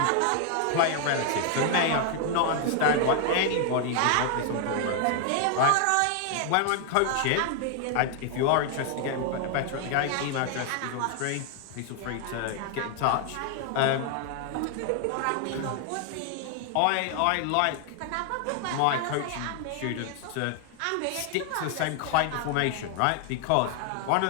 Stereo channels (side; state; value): both; different; correlation 0.00